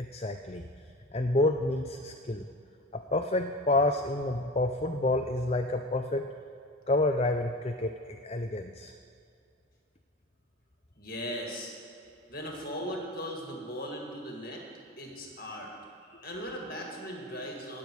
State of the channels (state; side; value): normal; both; correlation 0.33